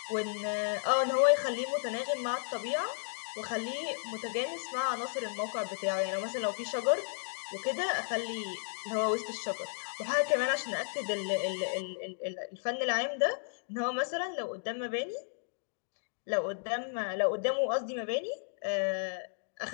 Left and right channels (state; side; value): silent; right; digital silence